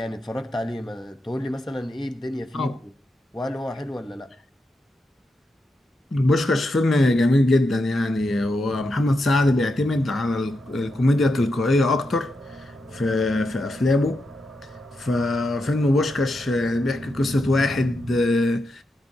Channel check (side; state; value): both; normal; correlation 0.85